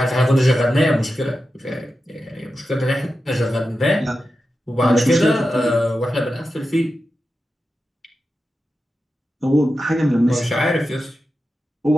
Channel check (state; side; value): normal; both; correlation 0.91